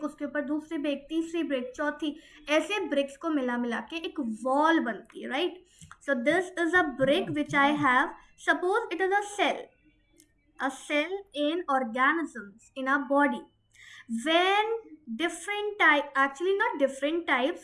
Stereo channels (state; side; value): identical; both; correlation 1.00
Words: उसके ऊपर दूसरी ब्रेक, तीसरी ब्रेक, चौथी, ऐसे ब्रिक्स को मिला मिला के एक वॉल बनती है, right? So this is a brick which I have. Suppose it is a cell in organisms in our body. When different type, actually not different